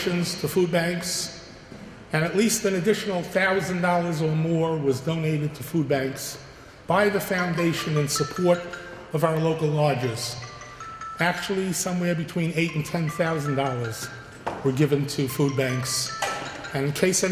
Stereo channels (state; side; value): identical; both; correlation 1.00